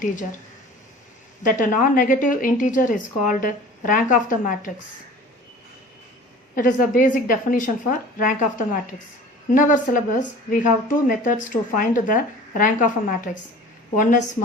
That a non-negative integer is called rank of the matrix. It is the basic definition for rank of the matrix. In our syllabus, we have two methods to find the rank of a matrix. One is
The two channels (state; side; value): normal; both; correlation 0.43